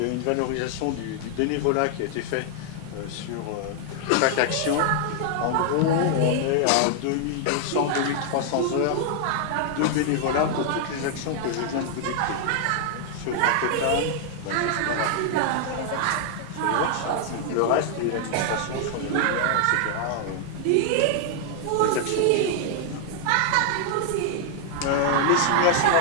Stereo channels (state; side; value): different; both; correlation 0.00